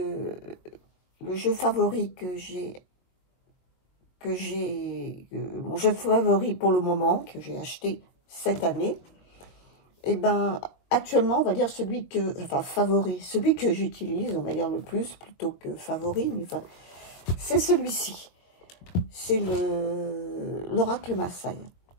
jeu favori mon jeu favori pour le moment que j'ai acheté cette année. Et ben actuellement, on va dire celui que j'utilise, on va dire le plus plutôt que favori, mais enfin, c'est celui-ci. C'est l'Oracle Maasai,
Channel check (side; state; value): right; late; 22 ms